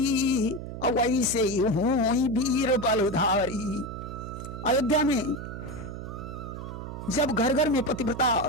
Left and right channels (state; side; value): noise; right; hum, 9 dB below the sound